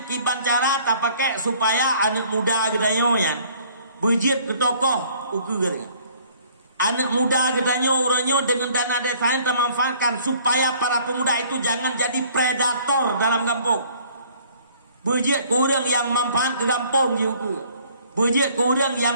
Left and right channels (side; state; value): both; inverted; correlation -0.57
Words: kiban cara tak pakai supaya anak muda gedanya yan bujit ke tokoh ukur. Anak muda gedanya orangnya dengan dana desanya termanfaatkan supaya para pemuda itu jangan jadi predator dalam kampung. Bujit kurang yang manfaat ke kampung juga. Bujit kurang